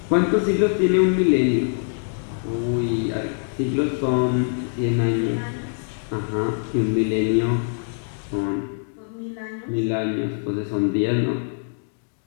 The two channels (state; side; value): silent; right; 63 dB below the other